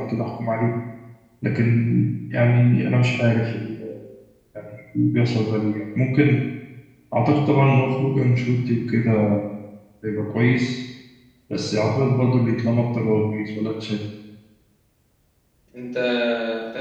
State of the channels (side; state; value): both; identical; correlation 1.00